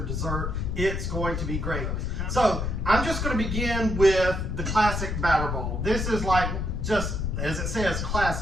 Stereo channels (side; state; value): left; noise; rumble, 2 dB below the sound